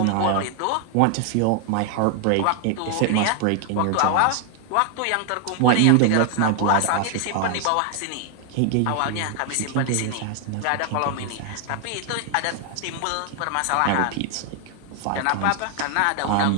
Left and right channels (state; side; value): different; both; correlation 0.00